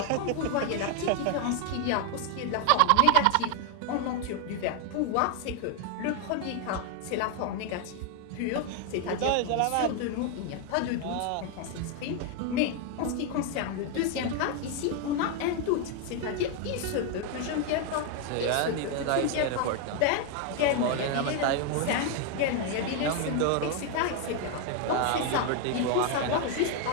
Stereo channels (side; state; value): both; different; correlation 0.01